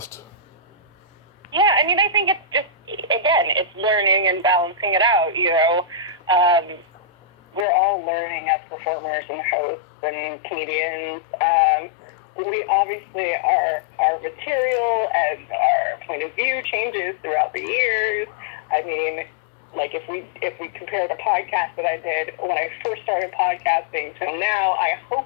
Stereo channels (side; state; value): right; drops out; at 7.7 s